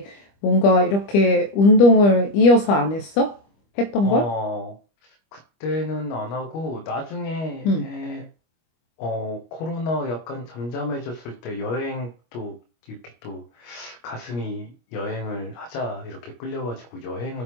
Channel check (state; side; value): late; right; 25 ms